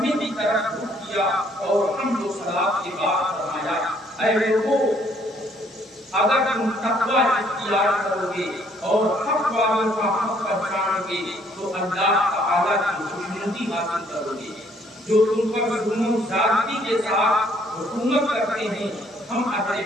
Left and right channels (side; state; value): both; normal; correlation 0.64